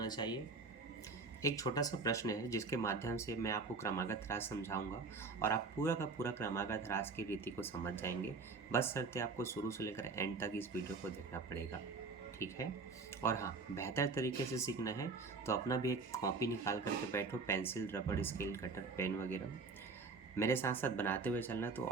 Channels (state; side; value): quieter; left; 4.2 dB